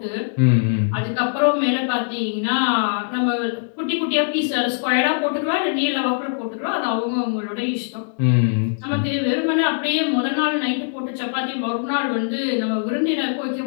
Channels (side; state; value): right; silent; digital silence